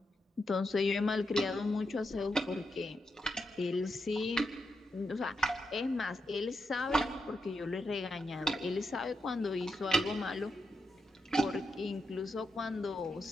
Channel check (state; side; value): normal; both; correlation 0.85